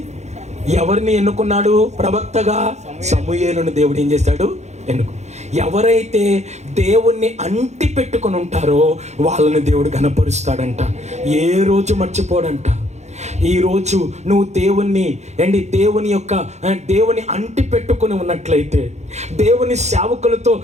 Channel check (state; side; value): late; left; 0.33 ms